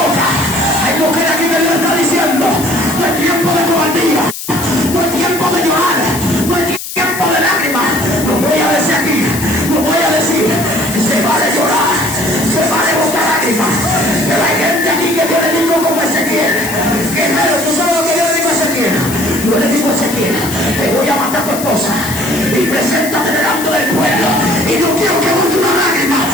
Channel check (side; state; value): left; noise; hiss, 8 dB below the sound